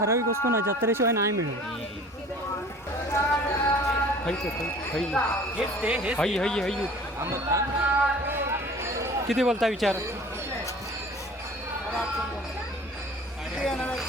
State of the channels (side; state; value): both; normal; correlation 0.46